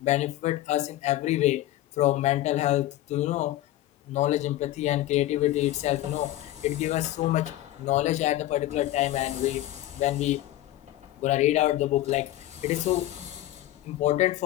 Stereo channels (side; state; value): right; quieter; 15.0 dB